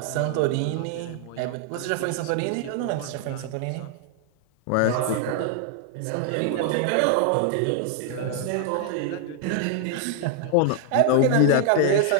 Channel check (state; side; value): different; both; correlation 0.00